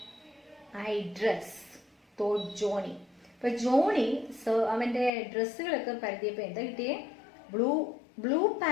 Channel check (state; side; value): drops out; right; at 5.1 s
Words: I dress? thought Johnny. അപ്പോൾ ജോണി അവൻ്റെ ഡ്രസ്സുകളൊക്കെ പരതിയപ്പോൾ എന്താ കിട്ടിയേ? ബ്ലൂ